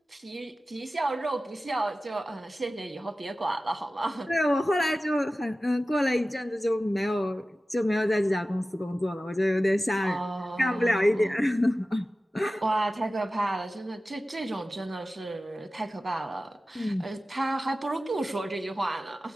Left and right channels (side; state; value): both; normal; correlation 0.96